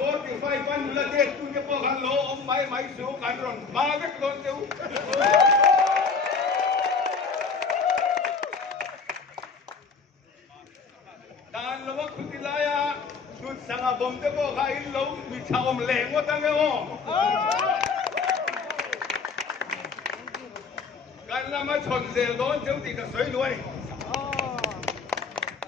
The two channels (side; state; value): right; quieter; 4.9 dB